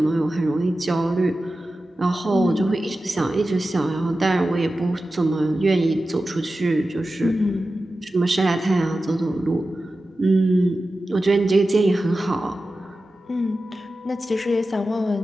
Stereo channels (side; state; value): both; normal; correlation 0.94